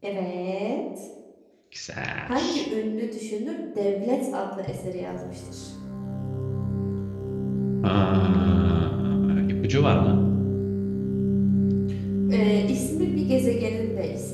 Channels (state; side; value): identical; both; correlation 1.00